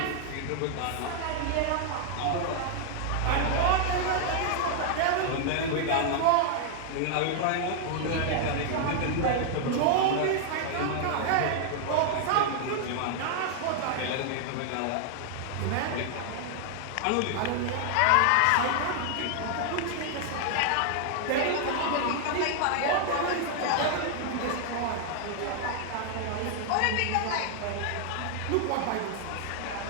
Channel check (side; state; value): both; different; correlation 0.00